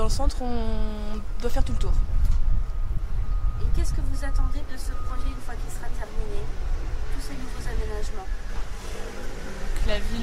le centre, on doit faire tout le tour. Et qu'est-ce que vous attendez de ce projet une fois qu'il sera terminé? Tous ces nouveaux aménagements. Que la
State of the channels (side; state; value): both; identical; correlation 1.00